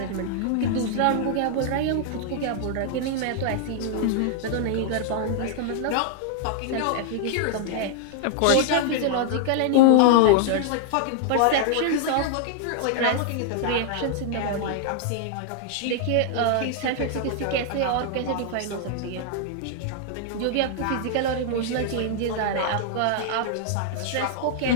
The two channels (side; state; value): both; different; correlation -0.01